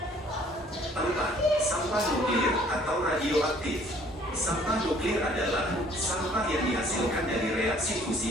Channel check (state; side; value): normal; both; correlation 0.57